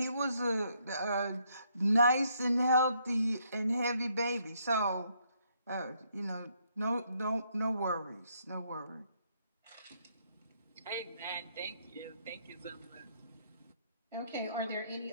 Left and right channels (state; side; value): inverted; both; correlation -0.72